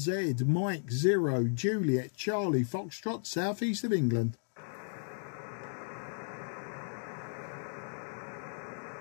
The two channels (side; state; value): right; silent; digital silence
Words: Mike 0, Juliet, Charlie, Foxtrot, southeast of England.